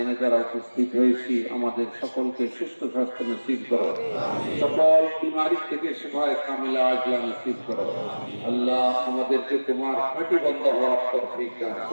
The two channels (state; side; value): inverted; both; correlation -1.00